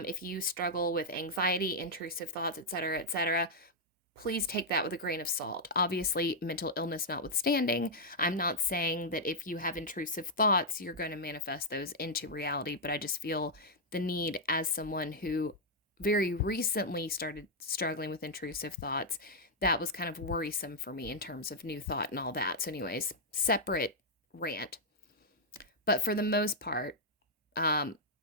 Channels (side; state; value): both; normal; correlation -0.05